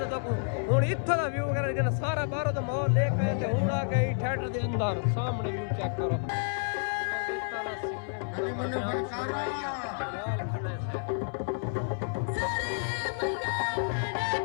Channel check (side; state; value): right; silent; 57 dB below the other